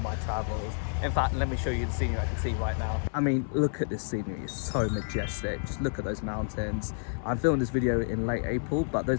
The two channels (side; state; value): right; silent; 58 dB below the other